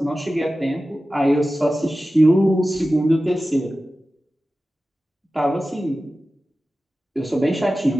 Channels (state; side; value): normal; both; correlation 0.95